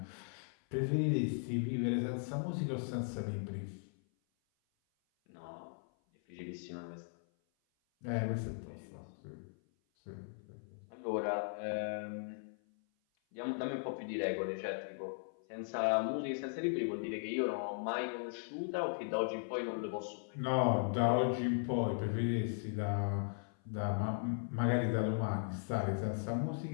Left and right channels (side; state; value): right; silent; 52 dB below the other